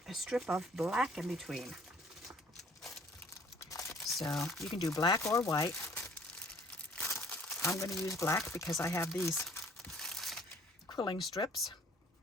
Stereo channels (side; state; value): both; normal; correlation 0.55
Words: a strip of black in between. So you can do black or white. I'm going to use black because I have these quilling strips.